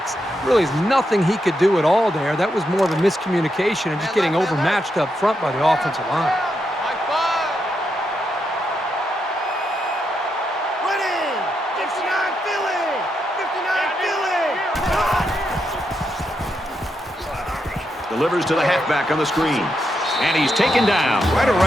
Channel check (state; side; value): normal; both; correlation 0.83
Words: Really is nothing he could do at all there. That was more of a miscommunication and just getting overmatched up front by the offensive line. Mike 5. Ready. 59 Philly. Delivers to the halfback on the screen. And he's taken down right